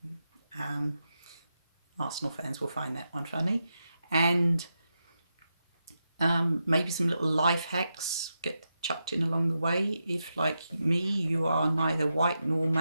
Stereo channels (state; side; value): inverted; both; correlation -0.87